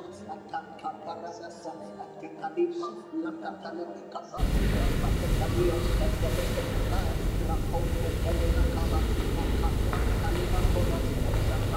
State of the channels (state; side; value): identical; both; correlation 1.00